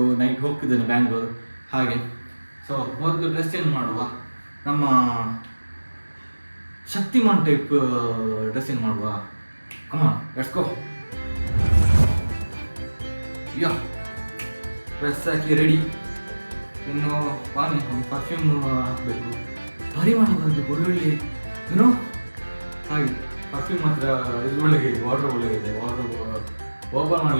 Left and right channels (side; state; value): both; inverted; correlation -1.00